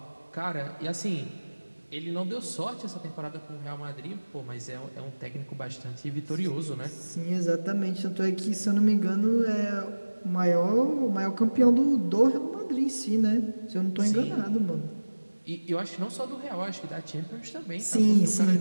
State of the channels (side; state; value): both; inverted; correlation -1.00